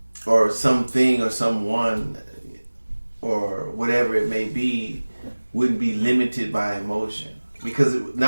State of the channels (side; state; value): both; inverted; correlation -1.00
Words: or something or someone, or whatever it may be, wouldn't be limited by emotion, because